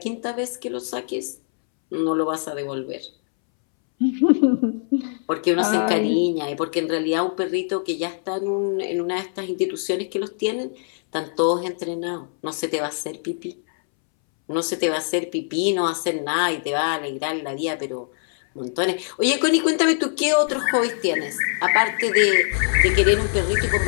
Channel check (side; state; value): right; silent; 64 dB below the other